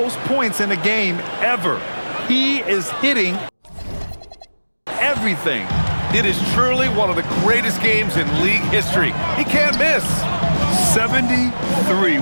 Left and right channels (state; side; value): inverted; both; correlation -1.00